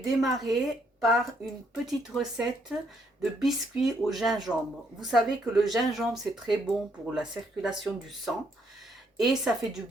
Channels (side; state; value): both; normal; correlation 0.72